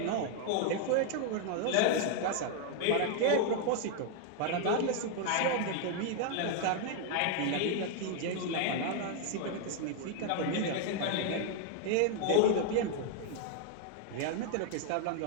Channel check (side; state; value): both; different; correlation 0.00